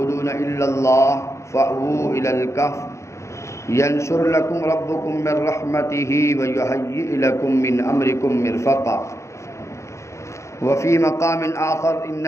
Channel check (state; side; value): late; right; 0.14 ms